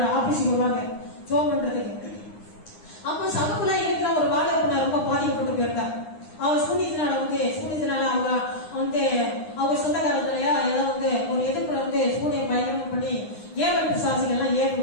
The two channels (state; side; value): late; right; 9.7 ms